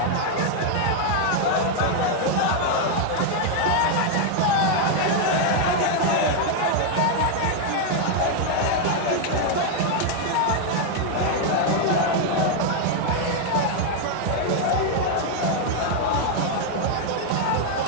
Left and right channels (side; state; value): both; different; correlation 0.00